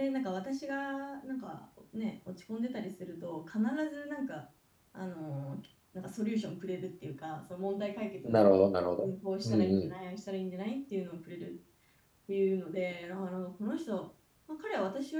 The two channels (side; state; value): both; identical; correlation 1.00